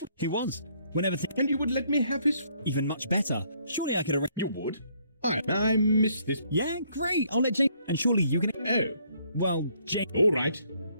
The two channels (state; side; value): inverted; both; correlation -0.67